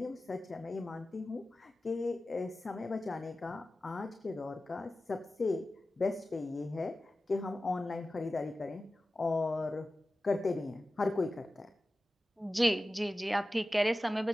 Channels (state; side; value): normal; both; correlation 0.95